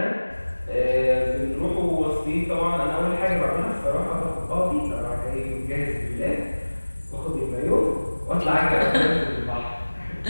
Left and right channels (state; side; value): inverted; both; correlation -1.00